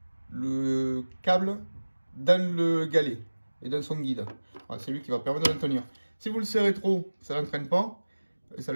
le câble dans le galet et dans son guide. Voilà, c'est lui qui va permettre de l'entraîner. Si vous le serrez trop, ça l'entraîne pas, et ça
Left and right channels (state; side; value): inverted; both; correlation -1.00